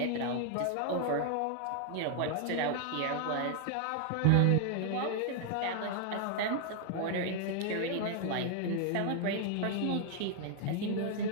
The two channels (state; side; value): different; both; correlation 0.00